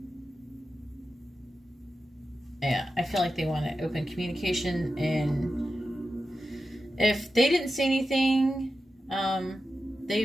yeah, I feel like they want to open communication, and if they didn't say anything,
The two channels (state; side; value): normal; both; correlation 0.91